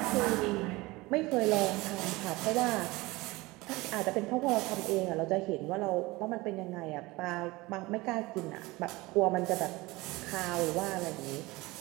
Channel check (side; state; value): left; quieter; 21.5 dB